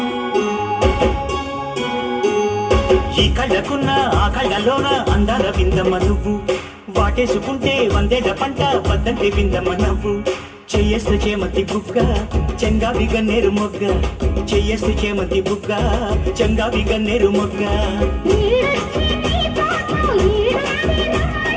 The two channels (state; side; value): identical; both; correlation 1.00